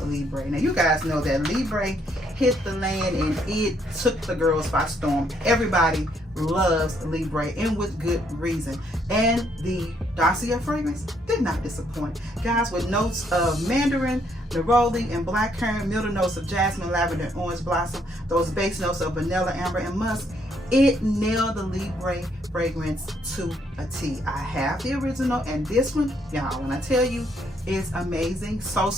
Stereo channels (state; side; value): normal; both; correlation 0.71